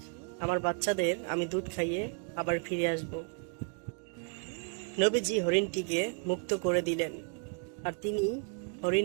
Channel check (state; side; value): quieter; left; 39.5 dB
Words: আমার বাচ্চাদের আমি দুধ খাইয়ে আবার ফিরে আসব। নবীজি হরিণটিকে মুক্ত করে দিলেন, আর তিনি